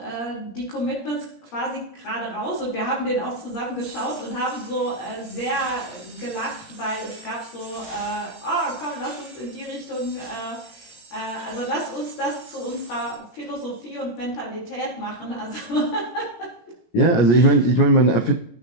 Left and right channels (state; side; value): late; right; 17 ms